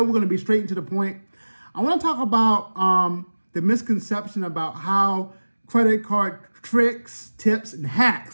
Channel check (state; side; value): inverted; both; correlation -1.00